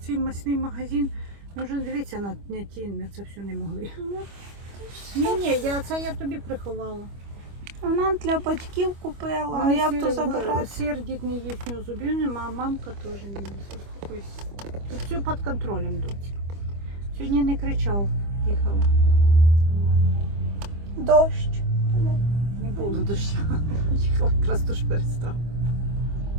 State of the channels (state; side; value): late; left; 25 ms